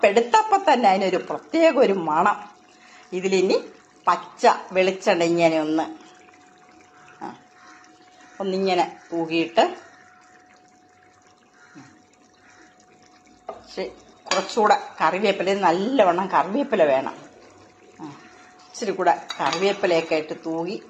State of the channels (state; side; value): identical; both; correlation 1.00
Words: തന്നെ അതിനൊരു പ്രത്യേക ഒരു മണം. ഇതിലിനി പച്ച വെളിച്ചെണ്ണ ഇങ്ങനെ ഒന്നിങ്ങനെ തൂകിയിട്ട് കുറച്ചുകൂടെ കറിവേപ്പില, നല്ലവണ്ണം കറിവേപ്പില വേണം. ഇച്ചിരി കൂടെ കറിവേപ്പിലയൊക്കെ ഇട്ട് തൂകി